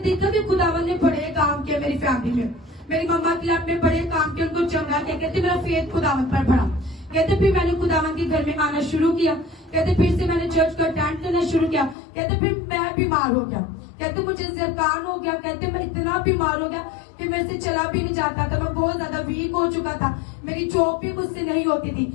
देखा कि खुदावन ने बड़े काम किए मेरी फैमिली में, मेरी मम्मा के लाइफ में बड़े काम किए, उनको चंगा किया। कहते मेरा फेथ खुदावन पर बढ़ा। कहते फिर मैंने खुदावन के घर में आना शुरू किया। कहते फिर से मैंने चर्च को अटेंड करना शुरू किया। कहते फिर मैं बीमार हो गया। कहते मुझे ज़रकान हो गया। कहते मैं इतना बीमार हो गया कि मेरे से चला भी नहीं जाता था, मैं बहुत ज्यादा वीक हो चुका था, मेरी जॉब भी मुझसे नहीं होती थी।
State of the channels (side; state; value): right; drops out; at 12.0 s